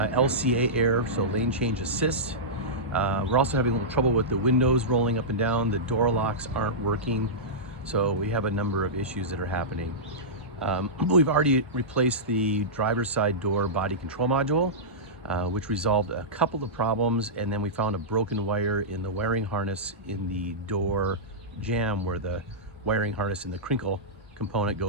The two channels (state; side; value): normal; both; correlation -0.14